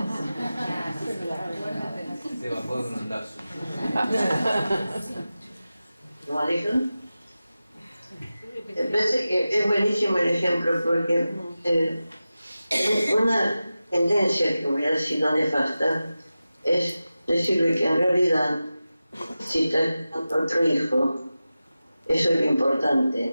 Se bajó de un ondazo. ¿Cómo dijo? Me parece que es buenísimo el ejemplo porque una tendencia que hubiera sido nefasta es decirle que en realidad si está con otro hijo, eso es lo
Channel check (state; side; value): inverted; both; correlation -0.94